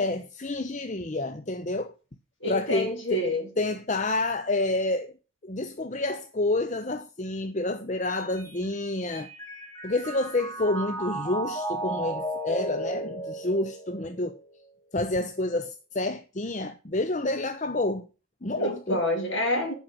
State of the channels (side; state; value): both; normal; correlation 0.10